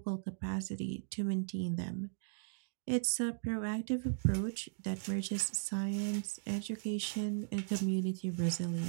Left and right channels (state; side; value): silent; left; digital silence